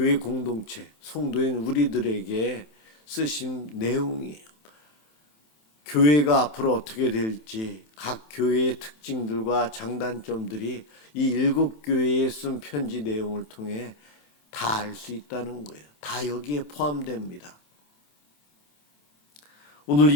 공동체, 성도인 우리들에게 쓰신 내용이에요. 교회가 앞으로 어떻게 될지 각 교회의 특징들과 장단점들이 이 7교회에 쓴 편지 내용을 통해 다 알 수 있다는 거예요. 다 여기에 포함됩니다. 오늘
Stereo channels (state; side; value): late; right; 27 ms